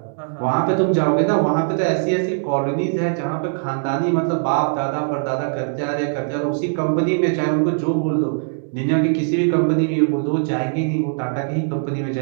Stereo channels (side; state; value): left; silent; 65 dB below the other